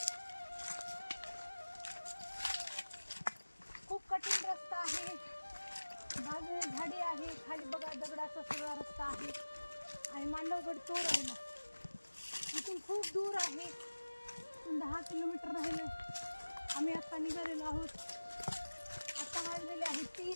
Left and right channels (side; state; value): both; inverted; correlation -1.00